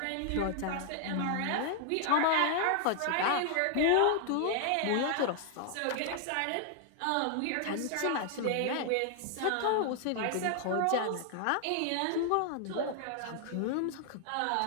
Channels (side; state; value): both; different; correlation 0.00